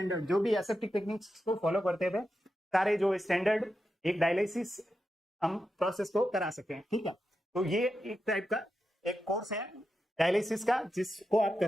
जो भी एसेप्टिक टेक्निक्स को फॉलो करते हुए सारे जो स्टैंडर्ड एक डायलिसिस हम प्रोसेस को करा सके। ठीक है, तो ये एक टाइप का एक कोर्स है डायलिसिस का जिसको आप कर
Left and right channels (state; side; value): normal; both; correlation 0.88